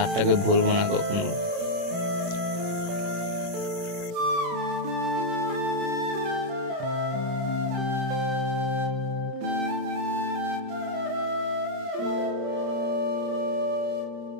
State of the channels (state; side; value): late; left; 29 ms